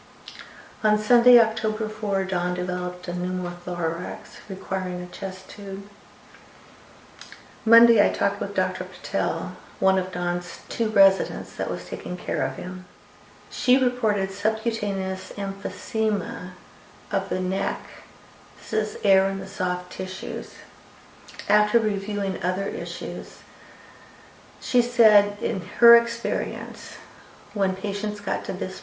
On Sunday, October 4, Don developed a pneumothorax requiring a chest tube. Monday, I talked with Dr. Patel, one of Don's 2 residents that was taking care of him. She reported subcutaneous emphysema of the neck. This is air in the soft tissues. After reviewing other issues, she said in her experience, when patients got to this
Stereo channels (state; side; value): identical; both; correlation 1.00